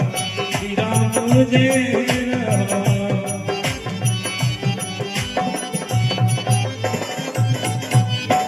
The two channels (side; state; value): both; identical; correlation 1.00